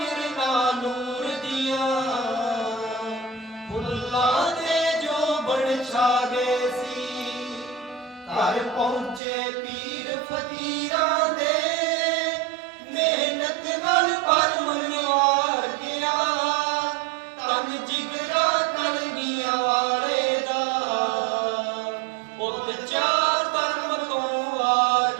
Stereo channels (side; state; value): left; drops out; at 9.2 s